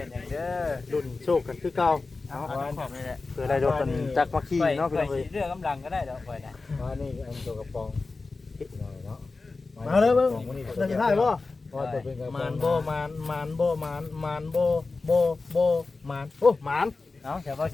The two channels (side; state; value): right; quieter; 3.8 dB